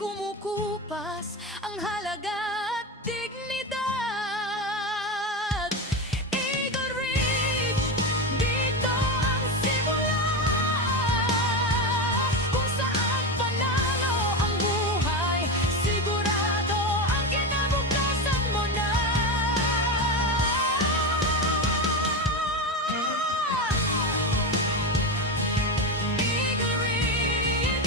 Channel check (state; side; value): normal; both; correlation 0.17